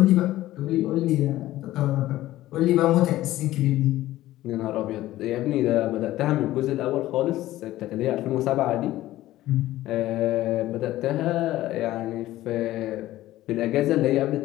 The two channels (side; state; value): right; quieter; 15.4 dB